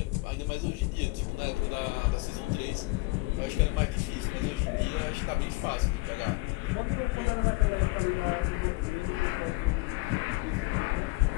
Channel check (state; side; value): quieter; right; 22.9 dB